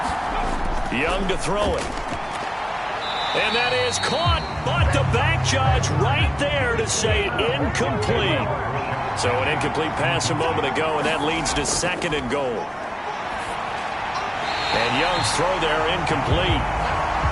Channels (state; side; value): identical; both; correlation 1.00